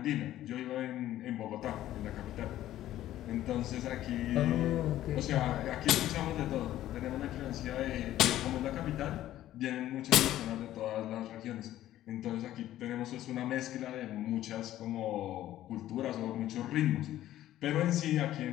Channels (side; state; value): right; quieter; 13.5 dB